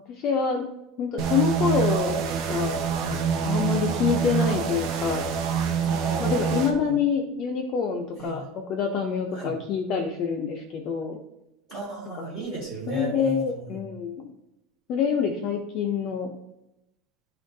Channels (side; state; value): both; normal; correlation 0.34